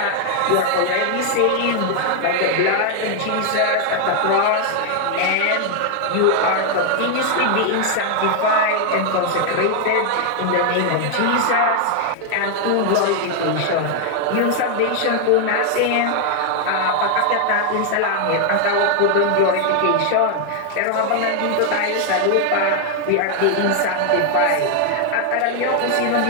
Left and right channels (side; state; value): both; different; correlation 0.00